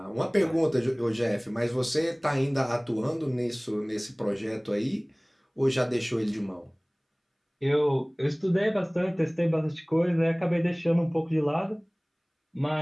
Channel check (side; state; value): both; identical; correlation 1.00